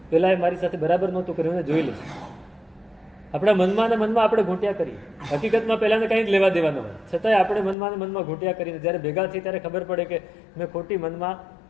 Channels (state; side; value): drops out; right; at 7.8 s